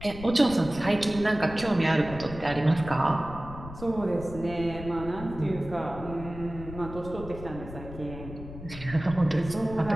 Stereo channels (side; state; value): left; noise; rumble, 12 dB below the sound